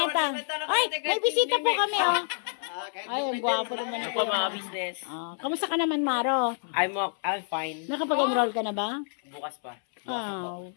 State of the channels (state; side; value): silent; right; 59 dB below the other